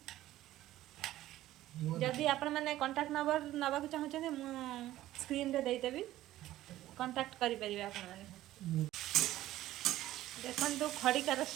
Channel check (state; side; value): quieter; left; 14.7 dB